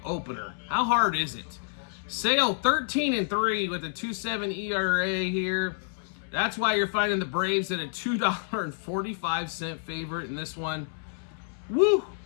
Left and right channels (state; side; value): silent; right; 59 dB below the other